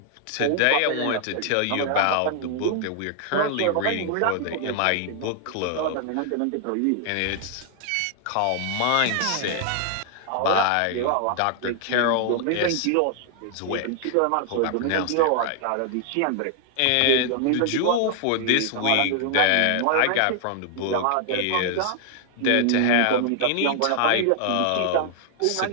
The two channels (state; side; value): different; both; correlation 0.00